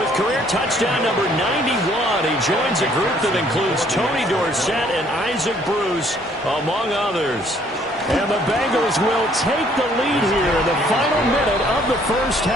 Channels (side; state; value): both; normal; correlation 0.62